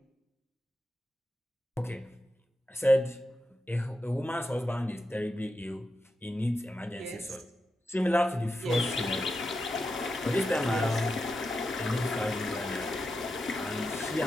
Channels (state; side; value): normal; both; correlation 0.88